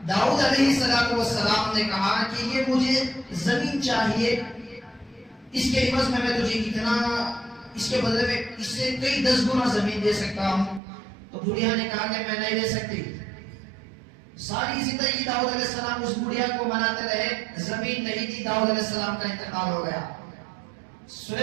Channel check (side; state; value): left; drops out; at 10.8 s